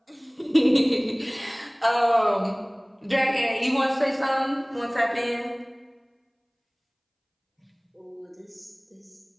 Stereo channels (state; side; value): identical; both; correlation 1.00